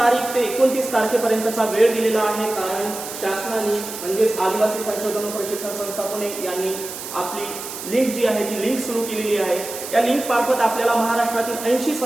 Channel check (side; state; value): right; noise; hiss, 9 dB below the sound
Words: ते 29 तारखेपर्यंतचा वेळ दिलेला आहे, कारण शासनाने म्हणजेच आदिवासी संशोधन व प्रशिक्षण संस्था पुणे यांनी आपली लिंक जी आहे ती लिंक सुरू केलेली आहे। या लिंक मार्फत आपल्याला महाराष्ट्रातील 80